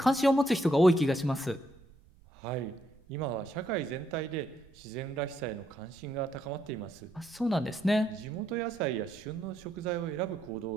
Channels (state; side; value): noise; right; rumble, 26 dB below the sound